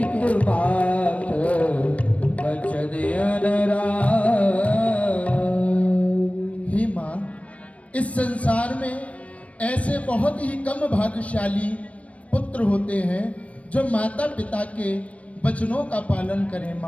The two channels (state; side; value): late; right; 0.065 ms